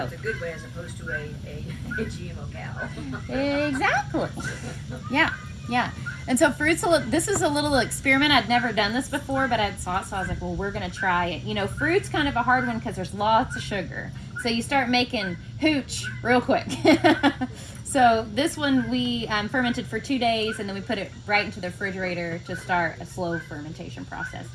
It's a good way as opposed to a GMO cow. exactly. Yeah. And so this is a little experiment. I'd never done this before, but I saw it, so I was like, well, we're going to try it. Fruit's kind of a hard one because there's lots of sugar. So you start making hooch real quick. So this one we fermented for 2 days, and then we put it right into the refrigerator to start a slow fermentation process.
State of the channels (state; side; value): identical; both; correlation 1.00